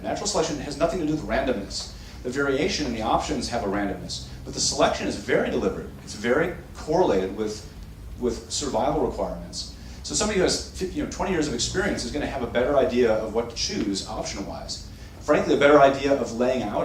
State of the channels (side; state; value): both; identical; correlation 1.00